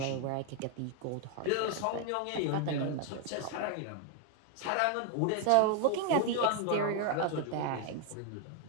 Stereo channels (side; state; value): both; different; correlation 0.00